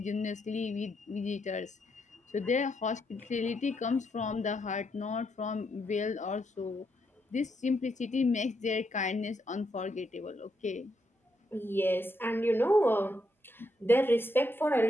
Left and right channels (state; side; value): normal; both; correlation 0.79